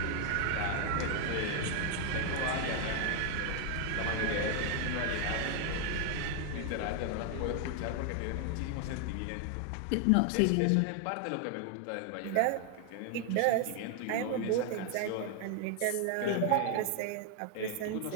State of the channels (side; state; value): both; different; correlation 0.00